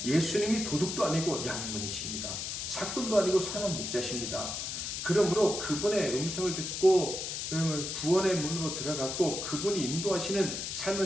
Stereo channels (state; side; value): noise; left; hiss, 4 dB below the sound